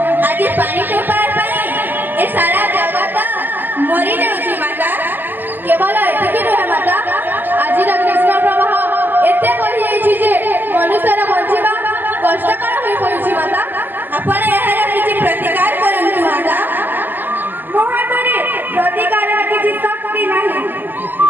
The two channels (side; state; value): left; late; 0.089 ms